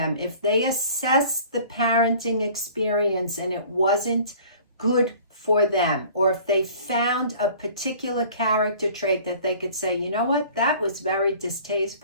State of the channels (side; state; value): both; inverted; correlation -0.48